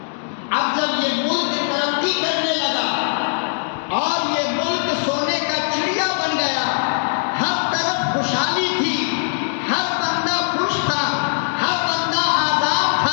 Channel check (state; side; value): silent; right; digital silence